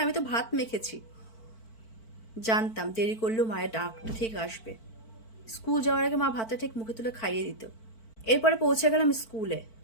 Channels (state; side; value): late; right; 4.5 ms